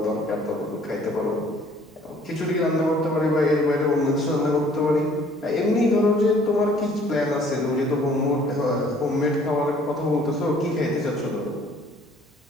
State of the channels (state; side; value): normal; both; correlation 0.57